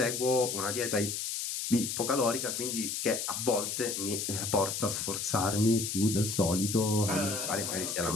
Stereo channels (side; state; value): left; noise; hiss, 3 dB below the sound